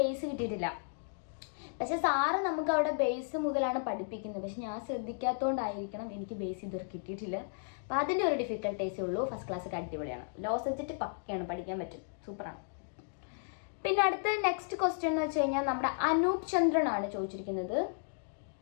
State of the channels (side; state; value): right; silent; digital silence